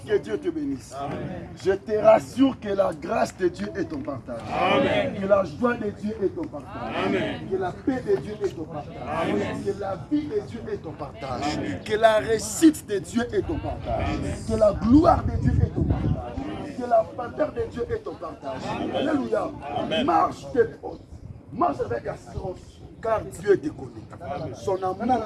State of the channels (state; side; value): identical; both; correlation 1.00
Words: que Dieu te bénisse. Amen. Je te rassure que la grâce de Dieu est ton partage. Amen. Que la joie de Dieu est ton partage. Amen. Que la paix de Dieu est ton partage. Amen. Que la vie de Dieu est ton partage. Amen. Que la réussite de Dieu est ton partage. Amen. Que la gloire de Dieu est ton partage. Que la faveur de Dieu est ton partage. Alléluia. Marche tes portes. Marche avec assurance. Car Dieu te connaît. Son